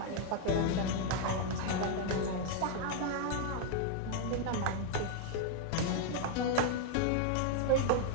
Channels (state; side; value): different; both; correlation 0.00